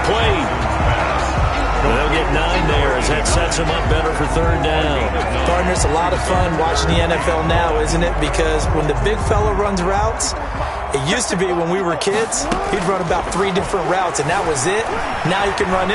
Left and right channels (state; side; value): identical; both; correlation 1.00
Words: They'll get 9 there as that sets him up better for 3rd down. Partner, it's a lot of fun watching the NFL now, isn't it? Because when the big fella runs routes, it used to be when we were kids, he'd run about 3 different routes, and that was it. Now he can run